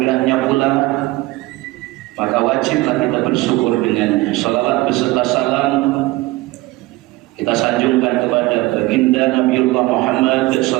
pula maka wajiblah kita bersyukur dengannya. Salawat beserta salam kita sanjungkan kepada baginda Nabiullah Muhammad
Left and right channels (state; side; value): quieter; left; 19.7 dB